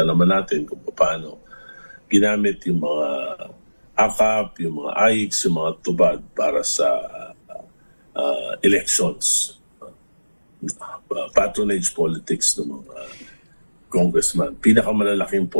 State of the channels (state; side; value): inverted; both; correlation -1.00